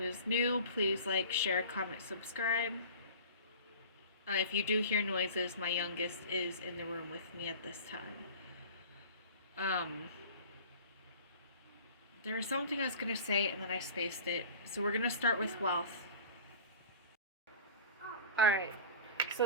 is new. Please like, share, comment, subscribe. If you do hear noises, my youngest is in the room with me at this time. There was something I was going to say and then I spaced it. So we're going to start with wealth. Alright,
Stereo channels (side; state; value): both; inverted; correlation -0.39